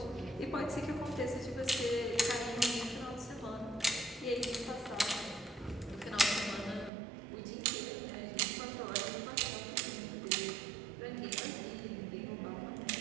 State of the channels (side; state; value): left; drops out; at 6.9 s